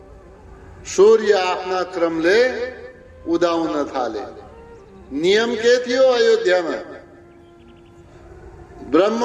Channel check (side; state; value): both; identical; correlation 1.00